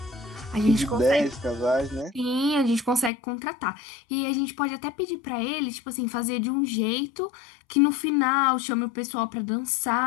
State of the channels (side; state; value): right; drops out; at 3.1 s